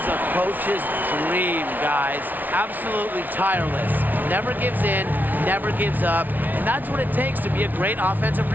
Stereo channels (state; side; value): late; left; 0.083 ms